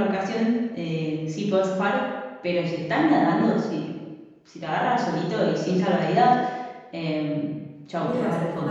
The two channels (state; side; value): identical; both; correlation 1.00